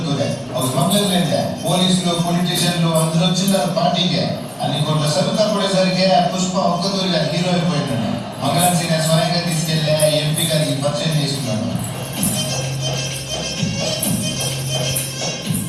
ಅವ್ರು ಮೊದಲೇ పోలీసులు పొలిటీషియన్లు అందరూ వచ్చిన్నారు పార్టీకి. అన్ని కోట్ల సరుకు పడేసరికి పుష్ప ఒక్కదూరిగా హీరో అయిపోయినాడు. మంగళం సీనియర్ స్వయంగా తీసుకెళ్ళి ఎంపీ గారికి పరిచయం చేసుకున్నాడు.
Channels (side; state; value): both; identical; correlation 1.00